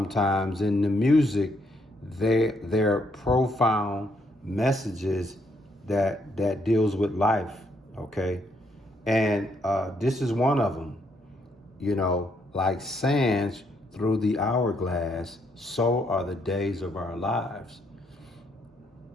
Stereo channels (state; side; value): normal; both; correlation 0.74